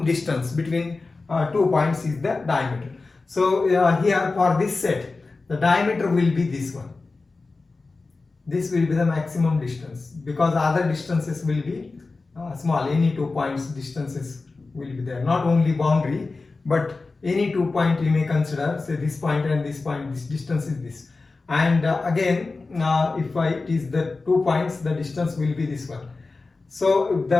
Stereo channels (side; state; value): right; quieter; 3.8 dB